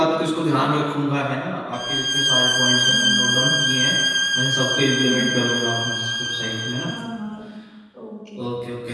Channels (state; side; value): identical; both; correlation 1.00